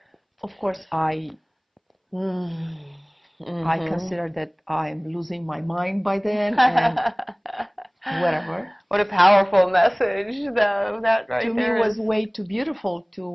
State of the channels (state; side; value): identical; both; correlation 1.00